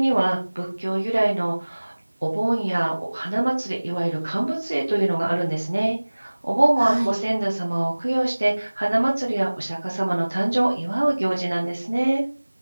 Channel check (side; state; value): both; inverted; correlation -1.00